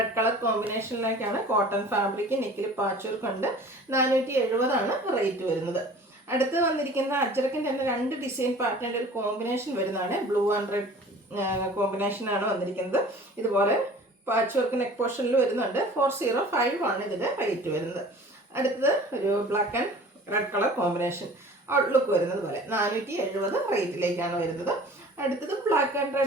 കളർ കോമ്പിനേഷനിലേക്കാണ്. കോട്ടൺ ഫാബ്രിക് നെക്കിൽ പാച്ച് വർക്ക് ഉണ്ട്. 470 ആണ് റേറ്റ് വരുന്നത്. അടുത്ത് വന്നിരിക്കുന്ന അജ്രക്കിൻ്റെ തന്നെ രണ്ട് ഡിസൈൻ പാറ്റേണിൻ്റെ ഒരു കോമ്പിനേഷൻ വരുന്നതാണ്. ബ്ലൂ ആൻഡ് റെഡ് കോമ്പിനേഷനാണ് വന്നിരിക്കുന്നത്. ഇതുപോലെ പാച്ച് വർക്ക് നെക്ക് പോർഷനിൽ വരുന്നുണ്ട്. 405 ആണ് ഇതിൻ്റെ റേറ്റ് വരുന്നത്. അടുത്തത് ഒരു black and red colour combination outlook വരുന്നത് പോലെ 470 റേറ്റിലേക്കാണ് വരുന്നത്. അടുത്തത് ബ്ലാക്ക് ആൻഡ്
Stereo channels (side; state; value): both; normal; correlation 0.45